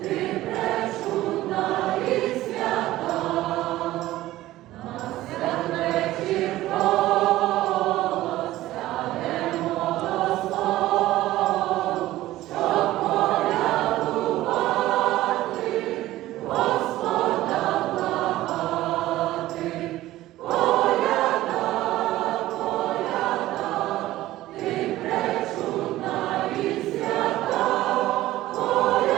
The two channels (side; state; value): left; quieter; 15.8 dB